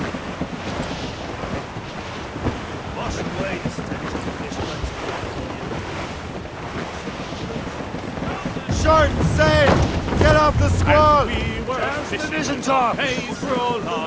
Wash away the stench of fish. Short and sail! Get off the squall! The vision top! Pays for all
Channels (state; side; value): identical; both; correlation 1.00